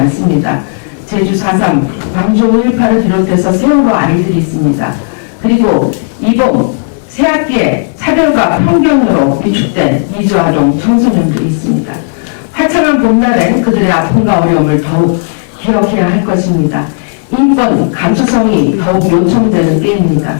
제주 4.3, 광주 5.18을 비롯해서 세월호 아이들이 있습니다. 그리고 이번 새학기에 차별과 편견으로 위축된 이주아동 청소년들이 있습니다. 화창한 봄날엔 그들의 아픔과 어려움을 더욱 기억해야 할 것입니다. 인권, 감수성이 더욱 요청되는 때입니다.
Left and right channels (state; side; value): silent; right; digital silence